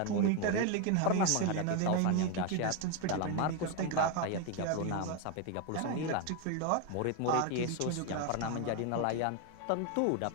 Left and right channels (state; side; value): different; both; correlation 0.01